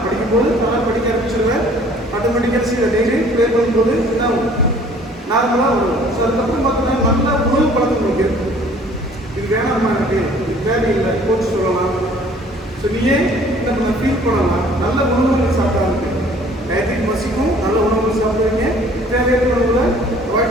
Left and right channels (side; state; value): both; normal; correlation 0.54